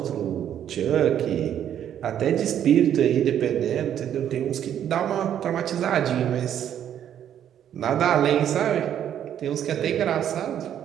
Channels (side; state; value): left; quieter; 10.0 dB